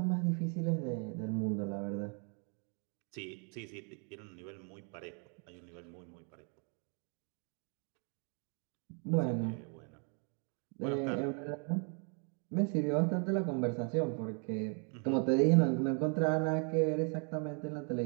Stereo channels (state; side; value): quieter; left; 39.0 dB